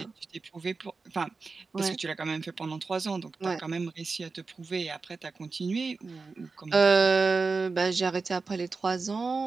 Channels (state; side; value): quieter; left; 4.2 dB